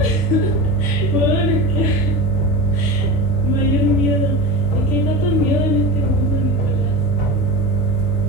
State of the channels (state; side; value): normal; both; correlation 0.28